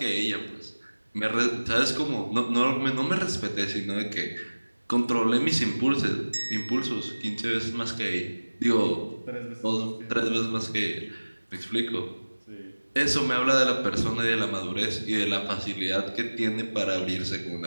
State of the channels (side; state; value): both; inverted; correlation -1.00